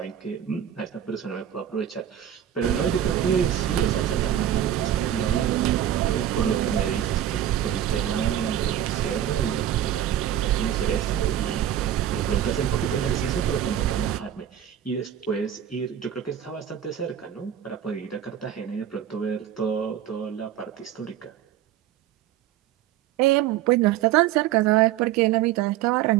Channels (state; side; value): quieter; left; 10.9 dB